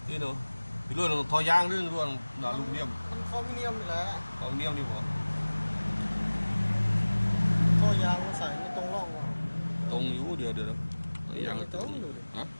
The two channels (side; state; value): both; inverted; correlation -1.00